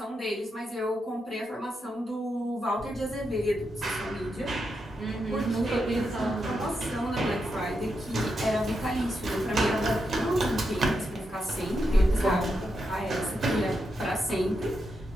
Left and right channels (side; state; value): both; normal; correlation 0.85